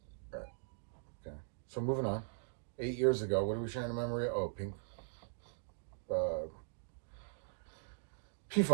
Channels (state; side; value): silent; left; digital silence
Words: Okay. So moving on. 8 years ago, what are we sharing a memory? Oh, Pink.